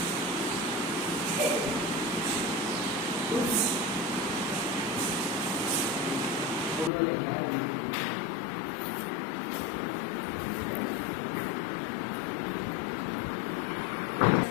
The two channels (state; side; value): drops out; right; at 6.9 s